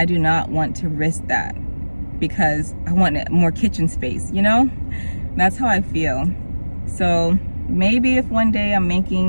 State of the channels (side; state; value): both; inverted; correlation -1.00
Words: do not want to risk that. because I want more kitchen space, you know? That's how I feel. So maybe if one day I'm